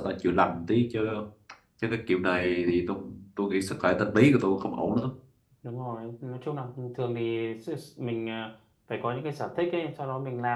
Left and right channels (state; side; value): identical; both; correlation 1.00